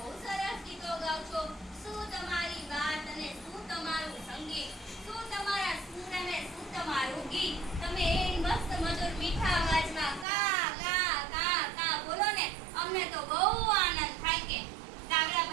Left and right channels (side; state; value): left; drops out; at 10.2 s